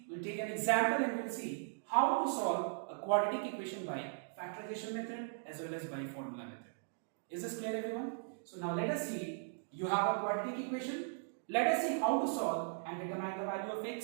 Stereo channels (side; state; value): left; silent; digital silence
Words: an example and we'll see how to solve a quadratic equation by factorization method as well as by formula method. Is this clear, everyone? So now let us see, you have a quadratic equation. Let us see how to solve and determine the value of